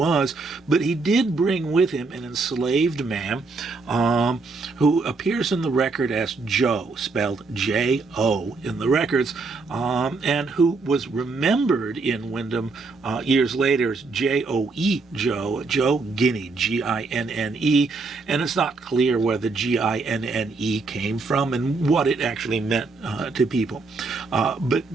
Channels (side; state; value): left; quieter; 3.9 dB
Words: but he did bring with him an enslaved man who appears in the record as Joe, spelled J-O in the records, and who was remembered in Windham years later as J-O-E, Joe Guinea, G-I-N-N-E, and it's not clear where the G-I-N-N-E came from and what it actually meant to people.